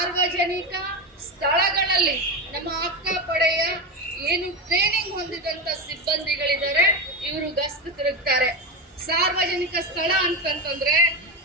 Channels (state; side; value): normal; both; correlation 0.16